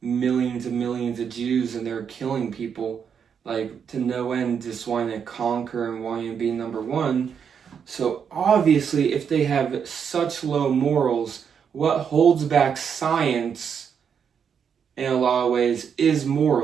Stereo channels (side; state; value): left; quieter; 7.2 dB